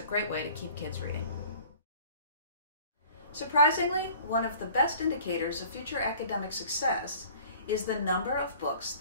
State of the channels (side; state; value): both; inverted; correlation -0.49